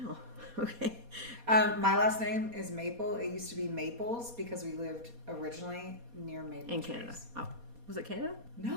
okay. My last name is Maple. It used to be Maples because we lived originally near maple In trees. Canada. Oh, was it Canada?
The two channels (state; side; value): late; left; 4.2 ms